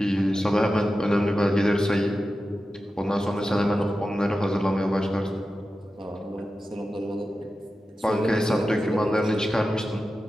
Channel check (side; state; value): both; normal; correlation 0.93